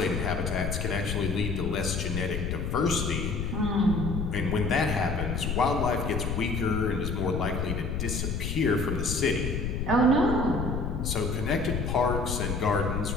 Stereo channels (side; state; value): left; noise; rumble, 2 dB below the sound